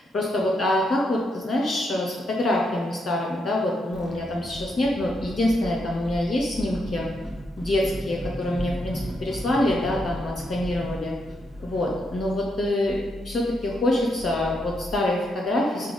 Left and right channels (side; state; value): both; normal; correlation 0.80